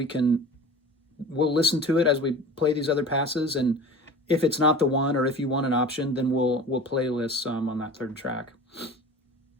listen to it as we play these other passes. And if it's not the one, or if you want an option, then we'll playlist some on that third track.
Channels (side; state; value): both; normal; correlation 0.38